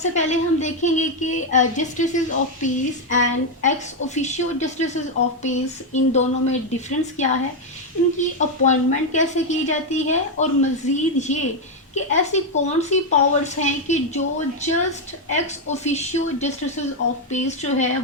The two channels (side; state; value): both; normal; correlation 0.03